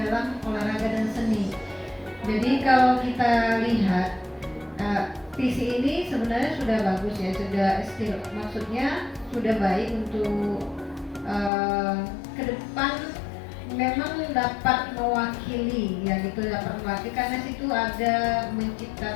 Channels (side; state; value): right; drops out; at 11.5 s